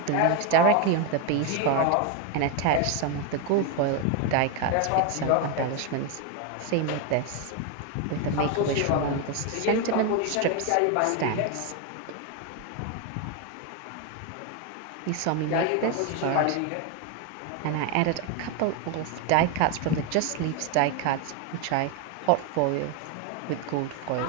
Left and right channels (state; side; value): different; both; correlation 0.01